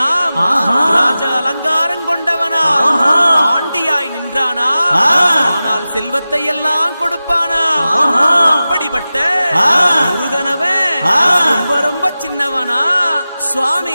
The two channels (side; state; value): both; inverted; correlation -0.95